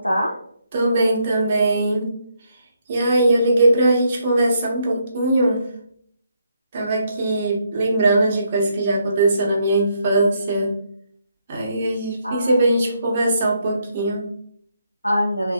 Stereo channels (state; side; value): inverted; both; correlation -0.75